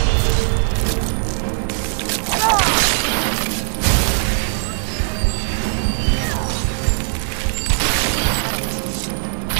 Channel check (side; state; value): left; silent; digital silence